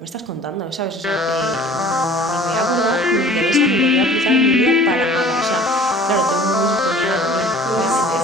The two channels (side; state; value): both; normal; correlation 0.47